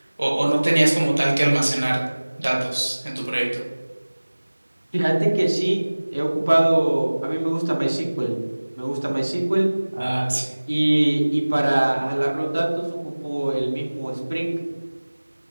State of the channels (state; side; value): inverted; both; correlation -1.00